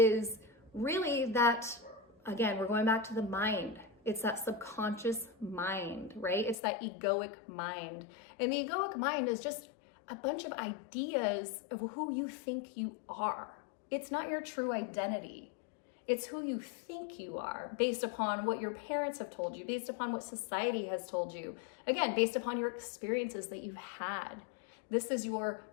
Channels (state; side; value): drops out; right; at 6.6 s